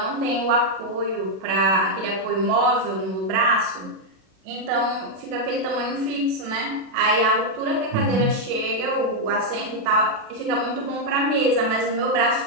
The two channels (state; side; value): late; left; 37 ms